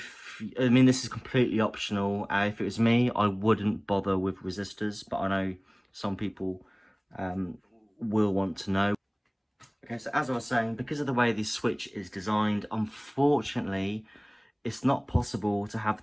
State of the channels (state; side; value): identical; both; correlation 1.00